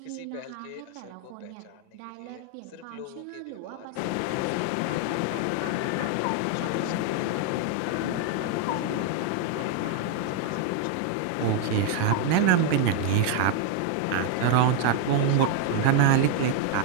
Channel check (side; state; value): both; different; correlation 0.00